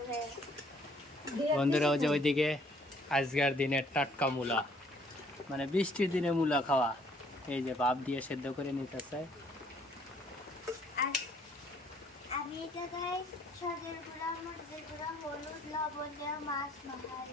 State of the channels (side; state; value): both; normal; correlation 0.62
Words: বন্ধুরা ওই যে ওইদিকে আজকের দিনের টাটকা মূলা, মানে বৃষ্টির দিনে মূলা খাওয়া, এই যে ভাপ দিয়ে সেদ্ধ করে নিতেছে। আর আমি এই জায়গায় সজের গুঁড়া, মরিচের গুঁড়া, হলুদ, লবণ দিয়ে মাছ মাখাই।